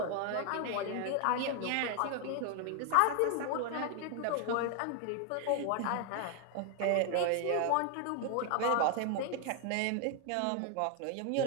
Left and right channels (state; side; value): different; both; correlation 0.00